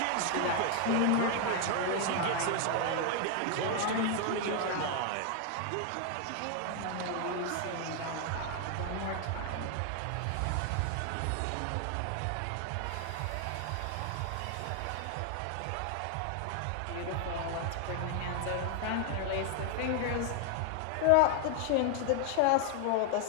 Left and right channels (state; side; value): different; both; correlation 0.00